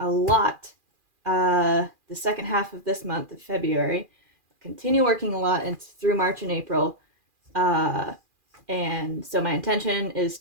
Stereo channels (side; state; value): left; late; 2.4 ms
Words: lot the second half of this month of February. Continue working a lot and through March and April. Uh, and so my intention is